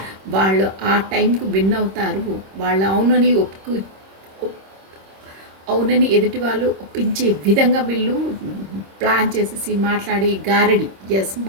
వాళ్ళు ఆ టైంకి విన్ అవుతారు. వాళ్ళు అవునని అవునని ఎదుటి వాళ్ళు ఒప్పించే విధంగా వీళ్ళు ప్లాన్ చేసేసి మాట్లాడి గారడి ఎస్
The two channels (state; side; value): late; left; 26 ms